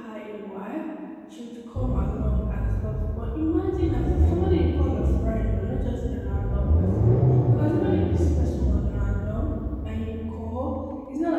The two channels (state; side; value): identical; both; correlation 1.00